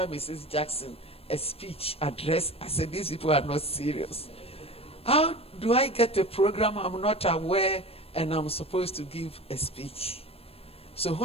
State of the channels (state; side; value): late; right; 0.28 ms